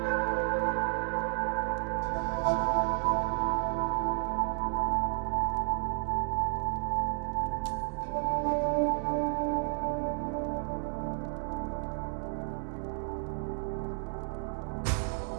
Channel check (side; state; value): left; silent; 57 dB below the other